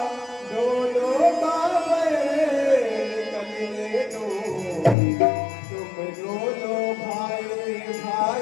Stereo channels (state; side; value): drops out; right; at 5.0 s